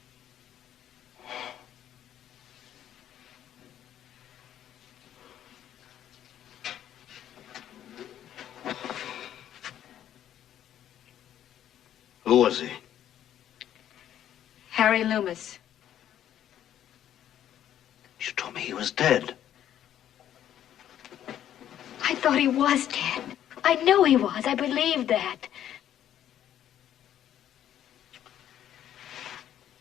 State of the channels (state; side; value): quieter; right; 11.0 dB